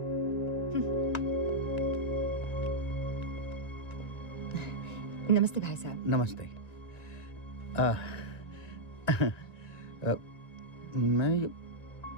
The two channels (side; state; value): right; late; 1.9 ms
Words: नमस्ते भाई साहब। नमस्ते। मैं